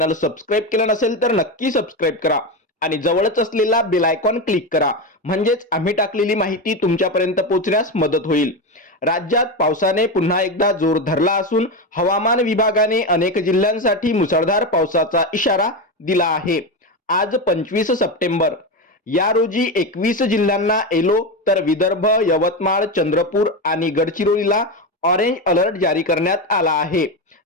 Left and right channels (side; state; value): both; normal; correlation 0.16